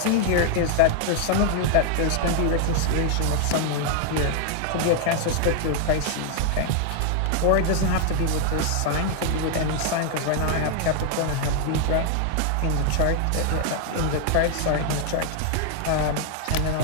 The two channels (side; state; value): both; different; correlation 0.00